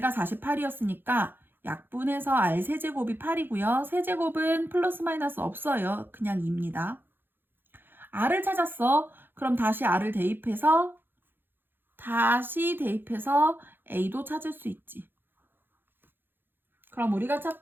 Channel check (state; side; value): late; left; 0.099 ms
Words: 48이었으니까 약분해서 R 세제곱이 8이고요. 세제곱은 플러스 마이너스 없어요. 그냥 2입니다. R을 찾았어. 그럼 다시 R을 대입해서 A도 찾을 수 있지. 그럼 우리가